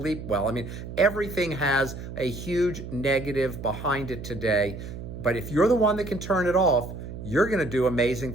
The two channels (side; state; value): right; noise; hum, 10 dB below the sound